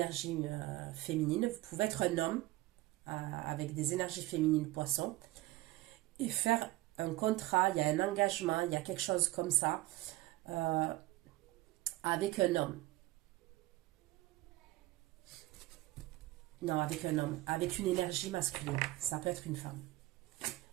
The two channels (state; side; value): quieter; left; 18.2 dB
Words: féminine. Vous pouvez être un homme avec des énergies féminines poisson et faire un contrat, il y a un engagement, il y a quelque chose comme ça avec un homme. Non, avec un homme, avec une énergie masculine. Ça peut être une femme.